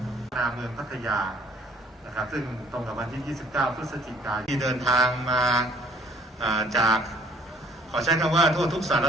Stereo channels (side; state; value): both; normal; correlation 0.57